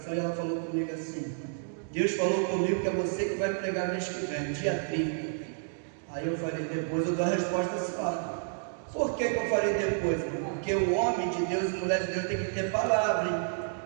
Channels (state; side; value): silent; left; digital silence